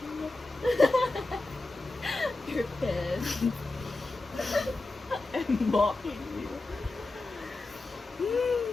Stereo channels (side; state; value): right; quieter; 3.1 dB